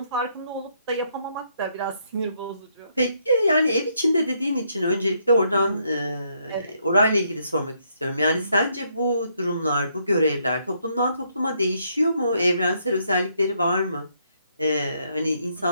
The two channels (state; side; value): inverted; both; correlation -0.73